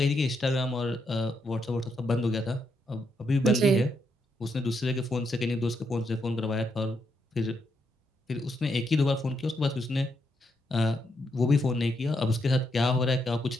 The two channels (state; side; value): normal; both; correlation 0.79